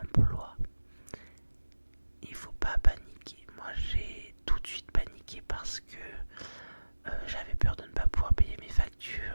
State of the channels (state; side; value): inverted; both; correlation -1.00